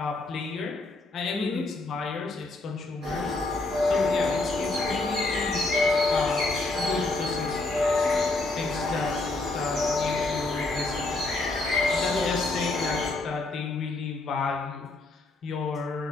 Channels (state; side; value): quieter; right; 3.1 dB